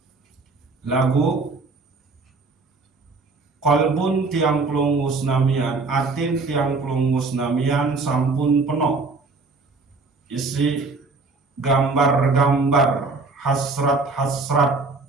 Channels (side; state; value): left; quieter; 3.8 dB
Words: Lagu qalbun tiang pelunggu senamian, atin tiang pelunggu senamian sampun penuh isi gambar-gambar hasrat-hasrat